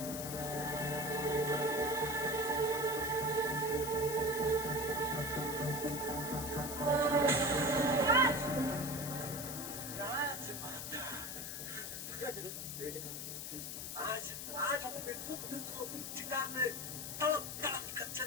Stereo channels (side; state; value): left; noise; hiss, 6 dB below the sound